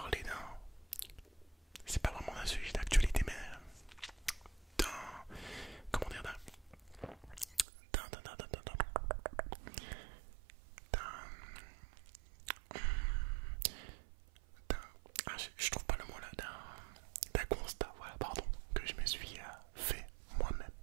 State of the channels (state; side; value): drops out; left; at 7.7 s